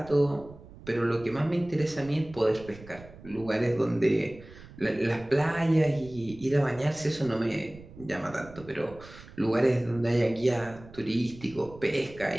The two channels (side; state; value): right; noise; rumble, 19 dB below the sound